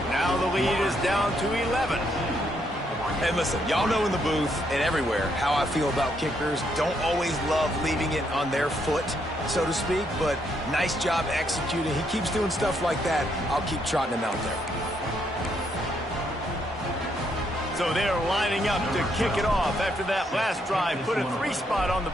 Now the lead is down to 11. And listen, y'all know in the booth and everywhere how I feel about kickers. Don't always love leaving it on their foot, so to speak, but nice job executing. He keeps doing stuff like that. I'll keep trotting him out there. So they're lining up to kick it off after that last drive. Put a 3 spot on the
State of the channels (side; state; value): both; normal; correlation 0.75